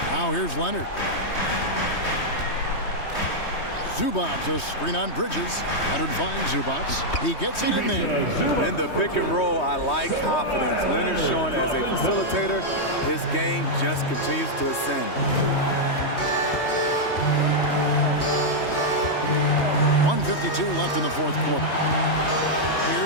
Now here's Leonard. Zubac, a screen on Bridges. Leonard finds Zubac. He gets it in there. In the pick and roll, I like confidence. Leonard showing as a facilitator, his game just continues to ascend. 1:52 left in the fourth quarter.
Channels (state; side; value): late; right; 3.2 ms